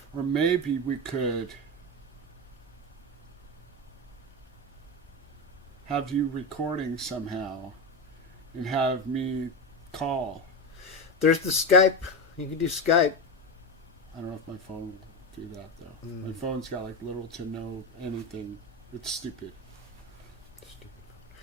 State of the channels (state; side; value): normal; both; correlation 0.17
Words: Or maybe we could have you recording somehow and have me call. There's the Skype. You can do Skype. I don't know if my phone will do that, though. My phone's got, little to no anything. It's stupid.